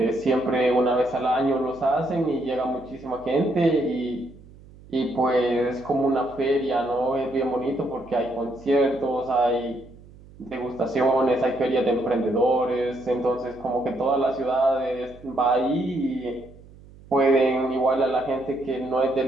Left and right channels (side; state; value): right; noise; hum, 22 dB below the sound